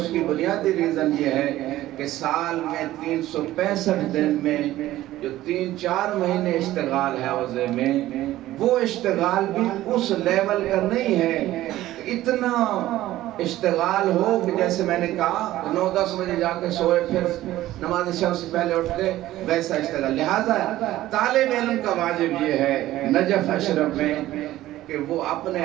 کی بنیادی ریزن یہ ہے کہ سال میں 365 دن میں جو 3-4 مہینے اشتغال ہے عوضے میں، وہ اشتغال بھی اس لیول کا نہیں ہے، اتنا اشتغال ہو کہ جیسے میں نے کہا 9-10 بجے جا کے سوئے پھر نماز شب سے پہلے اٹھ کے ویسا اشتغال۔ لہذا طالب علم کا واجب یہ ہے نجف اشرف میں کہ وہ اپنے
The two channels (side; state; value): left; quieter; 15.1 dB